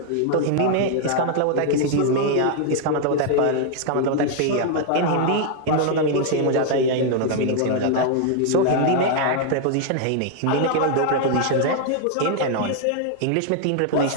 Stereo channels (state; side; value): different; both; correlation 0.00